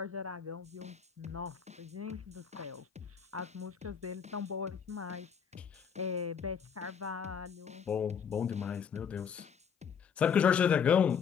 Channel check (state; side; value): quieter; right; 7.1 dB